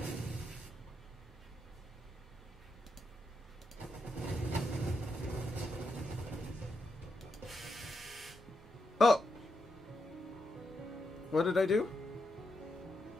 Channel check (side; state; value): both; normal; correlation 0.83